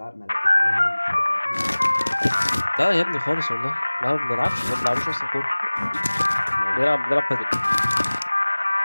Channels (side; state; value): both; inverted; correlation -1.00